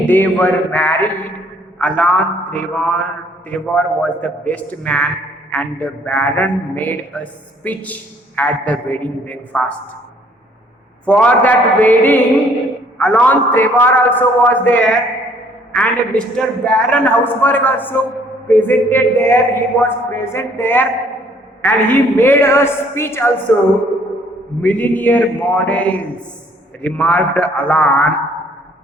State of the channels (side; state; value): both; normal; correlation 0.61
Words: they were married, Alan Trevor was the best man, and the Baron made a speech at the wedding breakfast. For that wedding, Alan Trevor also was there, and Mr. Baron Hausberg also presented there. He was present there, and he made a speech also. Millionaire models, remarked Alan,